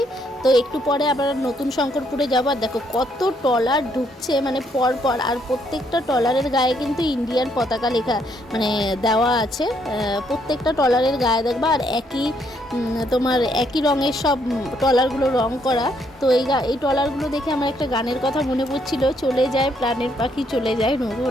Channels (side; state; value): both; normal; correlation 0.72